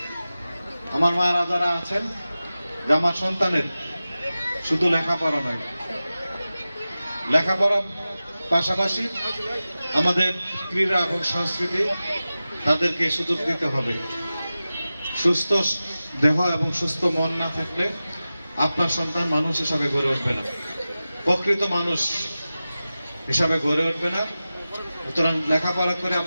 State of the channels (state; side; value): inverted; both; correlation -0.95